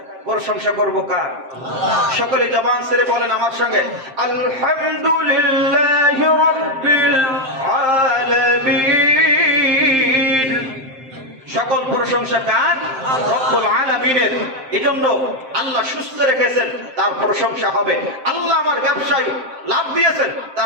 প্রশংসা করব কার? সকলে জবান ছেড়ে বলেন আমার সঙ্গে, আলহামদুলিল্লাহি রাব্বিল আলামিন। সকল প্রশংসা কার? রব্বুল আলামিনের। এজন্য আল্লাহ সুস্থ রেখেছেন, তার প্রশংসা হবে। আল্লাহ আমার ব্যবসায় লাভ দিয়েছেন,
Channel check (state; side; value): late; left; 7.6 ms